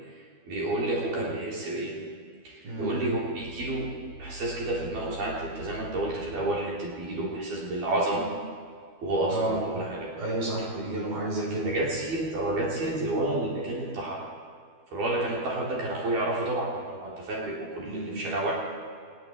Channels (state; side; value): late; left; 12 ms